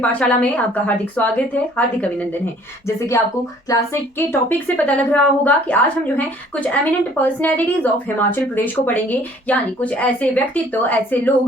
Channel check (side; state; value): both; normal; correlation 0.56